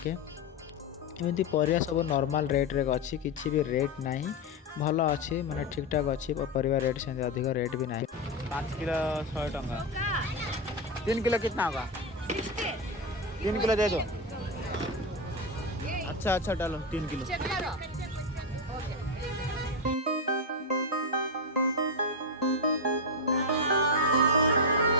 एमती परिया सब नॉर्मल रेट रे अच्छी किसी भी रेट नाही। भल अच्छी माने ठीक ठाक अच्छी परिवा रेट से अधिक रेट भी नहीं। 5 किलो 100 टंका। 3 किलो कितना होगा? 3 किलो दे दो। अच्छा अच्छा डालो 3 किलो।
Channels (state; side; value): normal; both; correlation 0.09